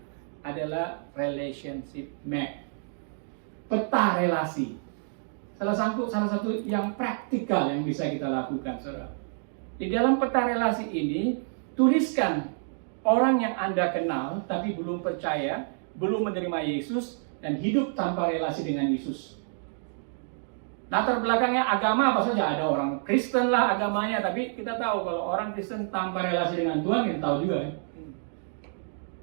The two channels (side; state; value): left; silent; digital silence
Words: adalah relationship map. Peta relasi. Salah satu yang praktikal yang bisa kita lakukan, saudara. Di dalam peta relasi ini, tuliskan orang yang Anda kenal tapi belum percaya, belum menerima Yesus, dan hidup tanpa relasi dengan Yesus. Latar belakangnya agama apa saja, ada orang Kristen lah agamanya, tapi kita tahu kalau orang Kristen tanpa relasi dengan Tuhan, kita tahu juga.